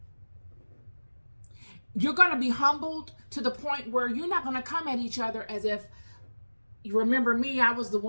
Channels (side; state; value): both; inverted; correlation -1.00